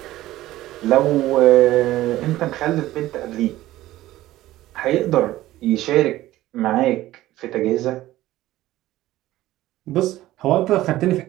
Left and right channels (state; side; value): quieter; left; 15.7 dB